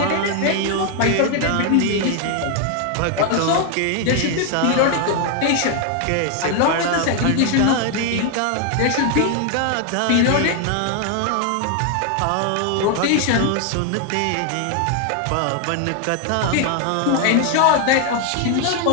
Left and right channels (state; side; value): different; both; correlation 0.00